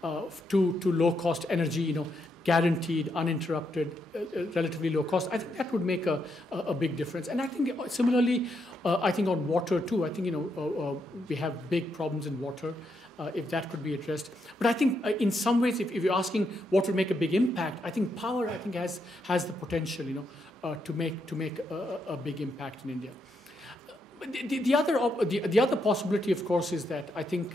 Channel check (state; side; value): normal; both; correlation 0.80